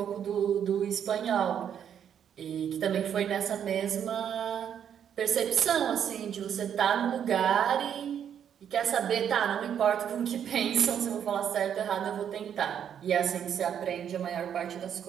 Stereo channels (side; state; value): left; quieter; 8.8 dB